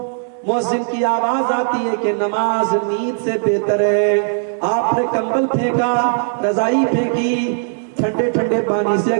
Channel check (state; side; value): silent; left; digital silence